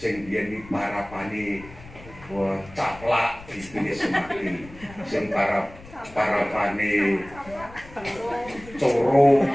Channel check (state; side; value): noise; left; rumble, 19 dB below the sound